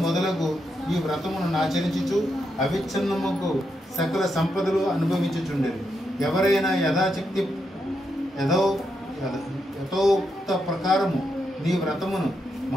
మొదలగు ఈ వ్రతమును ఆచరించుచు అవిచ్ఛిన్నముకు సకల సంపదలు అనుభవించుచుండెను. ఎవరైనా యథాశక్తి యథోక్త ప్రకారము నీ వ్రతమును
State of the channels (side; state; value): both; normal; correlation 0.82